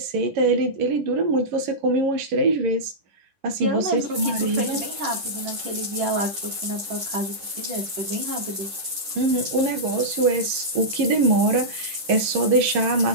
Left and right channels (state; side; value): late; left; 10 ms